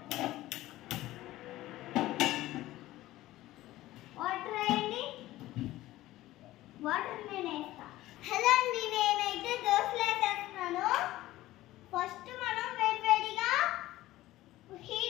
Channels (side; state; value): right; quieter; 16.2 dB